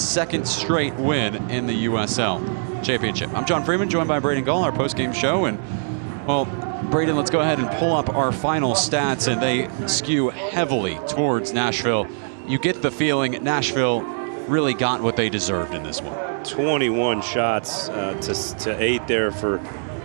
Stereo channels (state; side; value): silent; left; digital silence